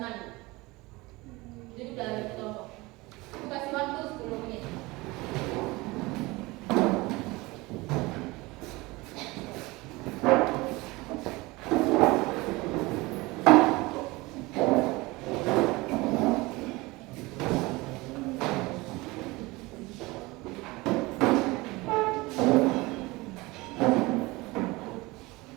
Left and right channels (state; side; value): quieter; left; 22.3 dB